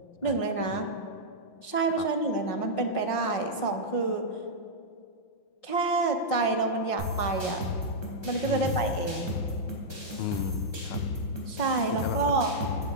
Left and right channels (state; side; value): late; right; 5.5 ms